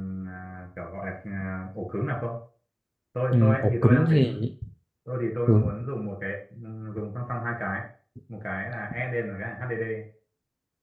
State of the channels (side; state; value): both; identical; correlation 1.00